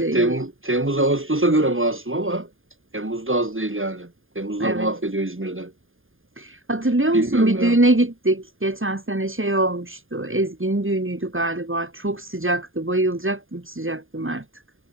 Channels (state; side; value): late; left; 0.59 ms